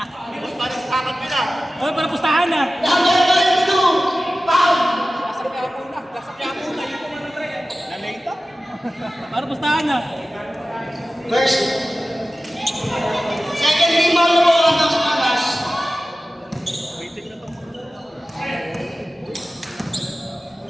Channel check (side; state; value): both; normal; correlation 0.95